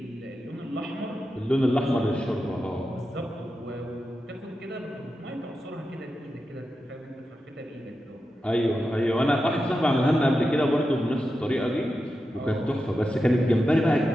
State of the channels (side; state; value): both; normal; correlation 0.90